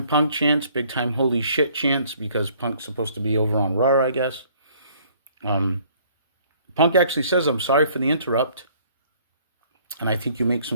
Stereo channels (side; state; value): both; inverted; correlation -0.60